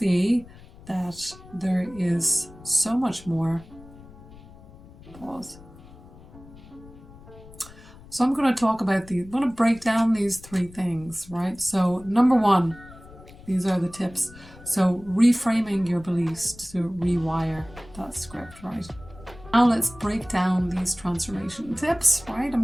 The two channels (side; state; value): left; noise; rumble, 20 dB below the sound